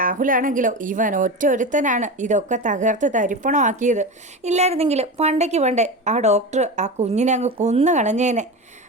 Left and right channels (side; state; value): both; normal; correlation 0.24